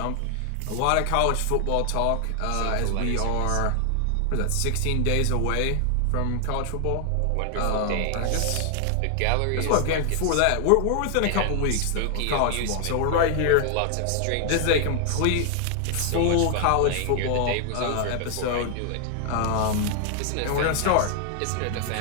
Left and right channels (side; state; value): both; different; correlation 0.00